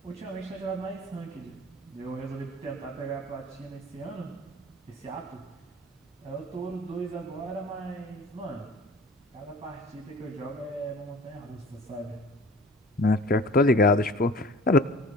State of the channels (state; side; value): normal; both; correlation 0.44